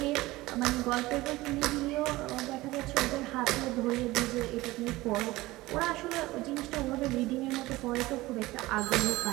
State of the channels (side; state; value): left; quieter; 19.1 dB